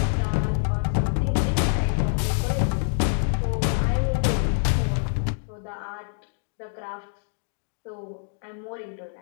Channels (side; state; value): right; silent; digital silence